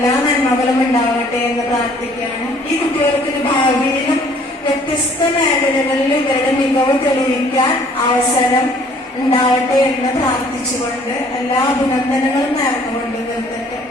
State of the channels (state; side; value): normal; both; correlation 0.58